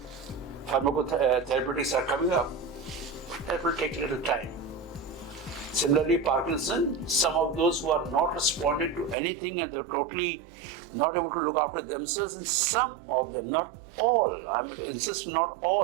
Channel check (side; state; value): left; drops out; at 9.2 s